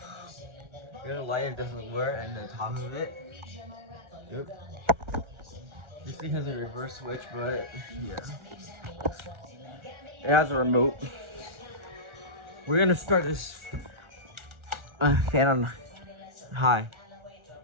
light. It doesn't work, and the top of it. Yep. This thing has a reverse switch, but yeah, it has a remote. We're gonna start this fan on high.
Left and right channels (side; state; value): left; late; 1.4 ms